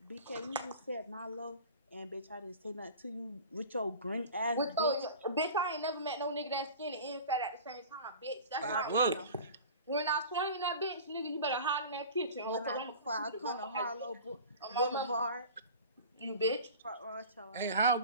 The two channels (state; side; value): inverted; both; correlation -0.38